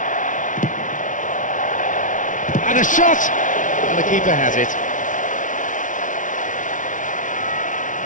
And a shot! And the keeper has it.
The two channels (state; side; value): late; right; 0.37 ms